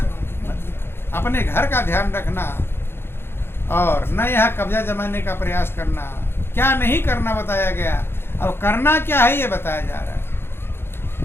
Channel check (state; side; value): late; right; 0.11 ms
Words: मत। अपने घर का ध्यान रखना और न यहाँ कब्जा जमाने का प्रयास करना। क्या नहीं करना बताया गया। अब करना क्या है ये बताया जा रहा है